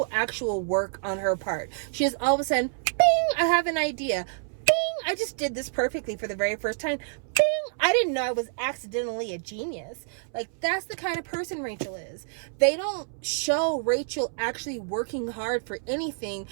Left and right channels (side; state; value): left; silent; 60 dB below the other